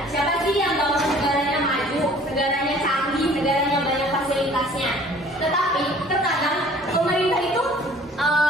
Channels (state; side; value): normal; both; correlation 0.51